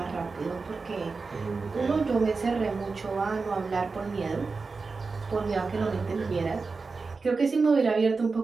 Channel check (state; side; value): quieter; left; 4.3 dB